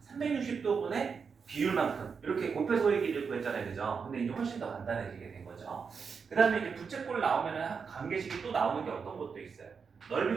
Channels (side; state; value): left; quieter; 5.8 dB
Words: 360도분의 비율만큼 이렇게 곱해서 호의 길이를 구했잖아요. 그죠? 근데 이제 훨씬 더 간단해지게 된 거죠. 그 다음에 이제 부채꼴 나오면은 관계식이 또 나오는 게 어떤 것도 있어요.